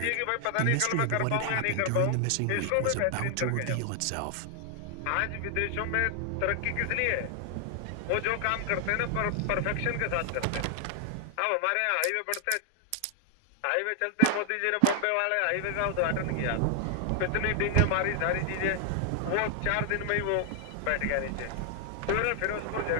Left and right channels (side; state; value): both; different; correlation 0.00